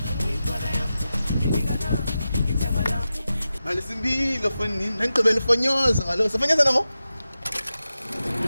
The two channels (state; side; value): inverted; both; correlation -0.92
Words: Mali simbilo fonini, nangigqibela fonyoza kaloku. Safonyoza nango?